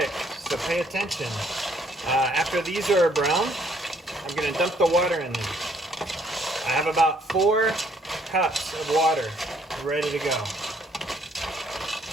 so pay attention. After these are brown, I'm going to dump the water in them. I have about 4 cups of water ready to go.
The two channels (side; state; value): both; normal; correlation 0.66